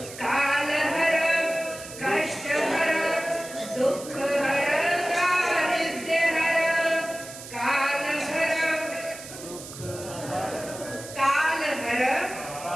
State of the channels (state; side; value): noise; right; hiss, 13 dB below the sound